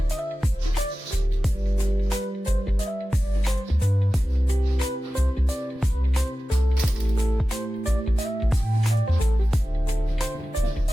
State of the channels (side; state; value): both; normal; correlation 0.95